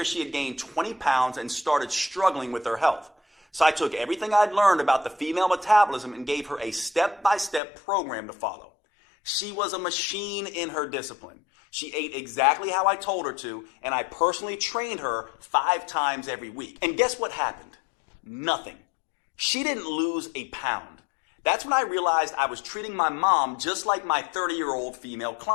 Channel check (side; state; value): right; drops out; at 7.6 s